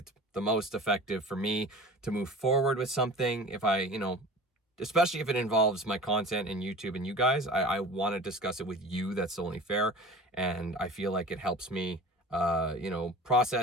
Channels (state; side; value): normal; both; correlation 0.38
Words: the most effective for me to move forward with something. If I, especially if it involves my content and YouTube and you guys, I want to discuss it with you. That's only fair. And I feel like it helps me